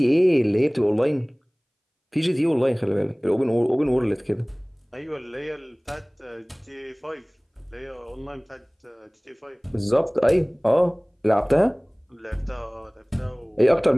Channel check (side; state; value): both; identical; correlation 1.00